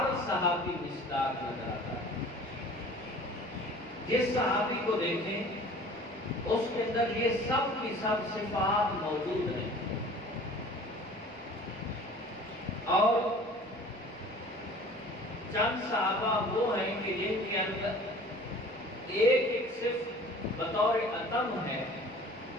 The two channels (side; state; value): both; normal; correlation 0.46